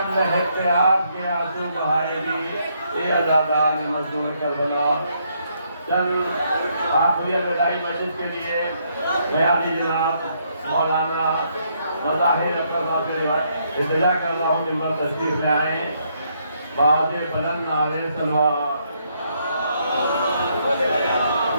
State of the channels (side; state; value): both; inverted; correlation -0.73